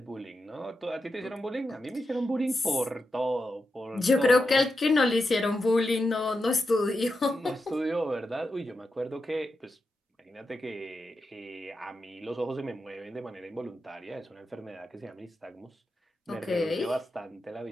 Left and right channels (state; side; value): normal; both; correlation 0.88